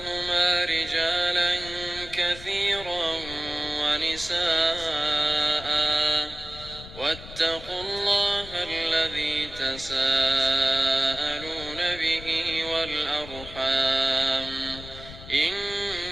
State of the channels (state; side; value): noise; left; rumble, 14 dB below the sound